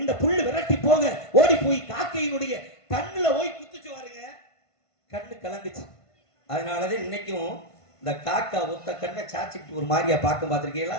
இந்த புல்லு விரட்டி போக ஓடி போய் காக்கையினுடைய கண்ணுல போய் குத்துச்சு பாருங்க, கண்ணு கலங்குச்சு. அதனாலதான் இன்னைக்கும் இந்த காக்கா ஒத்த கண்ணை சாச்சிட்டு ஒரு மாதிரியா பார்க்க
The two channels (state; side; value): late; right; 1.5 ms